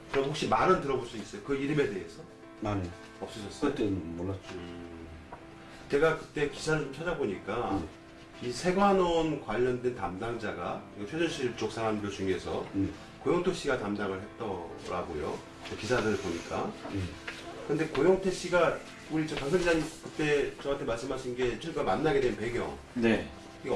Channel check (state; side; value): identical; both; correlation 1.00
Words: 그럼 혹시 말은 들어볼 수 있어요? 그 이름에 대해서? 아니, 없으셨어요? 그때는 몰랐죠. 제가 그때 기사를 좀 찾아보니까 이 세관원 관련된 담당자가 최순실 쪽 사람들 중에서 고영태 씨가 담당을 했더라고요. 그 기사들을 보니까. 근데 고영태 씨가 우리 강 기자님 그때 저한테 말씀하신 게 최가 만나게 된 배경 네. 이거